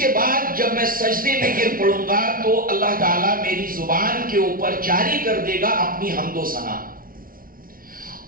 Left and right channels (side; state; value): left; late; 0.42 ms